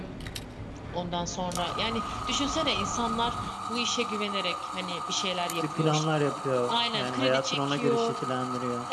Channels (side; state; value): both; identical; correlation 1.00